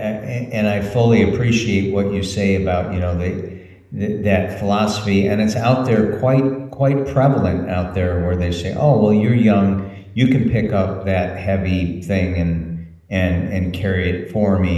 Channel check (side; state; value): both; identical; correlation 1.00